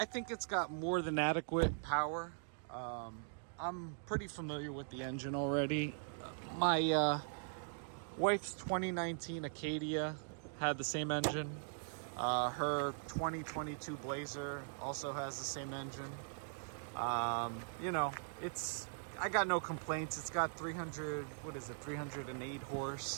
think it's got more than adequate power. I'm pretty familiar with the engine already. My wife's 2019 Acadia had the same engine. Her 2022 Blazer also has the same engine. You know, I got no complaints. It's got 308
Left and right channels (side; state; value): left; silent; digital silence